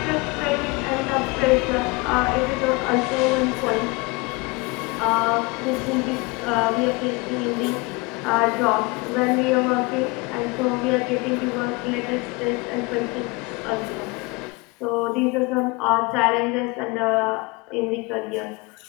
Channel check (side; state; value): right; quieter; 25.5 dB